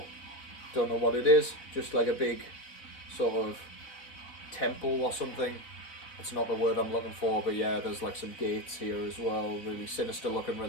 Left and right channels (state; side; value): late; right; 4.0 ms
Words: Don't know what it is, just like a big sort of temple or something. It's not the word I'm looking for, but yeah, there's like some gates here as well. Really sinister looking,